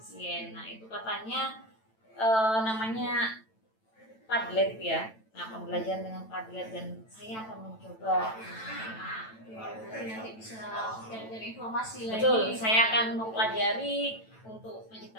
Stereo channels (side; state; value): right; late; 9.0 ms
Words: Nah itu katanya namanya Padlet ya. Nah pembelajaran dengan Padlet, dan saya akan mencoba. nanti bisa cari informasi lagi. Betul, saya akan mempelajari untuk